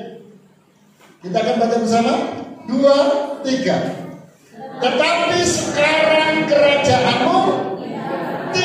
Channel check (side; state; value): both; identical; correlation 1.00